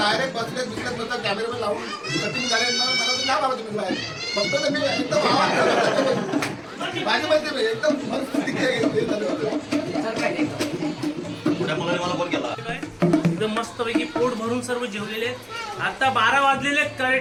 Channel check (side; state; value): both; identical; correlation 1.00